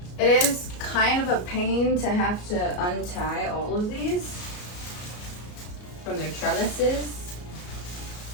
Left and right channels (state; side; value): late; right; 33 ms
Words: It is kind of a pain to have to untie all of these from their trellises,